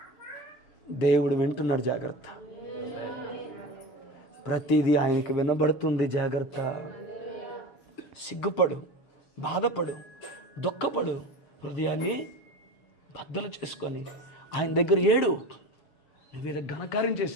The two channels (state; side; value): late; right; 7.5 ms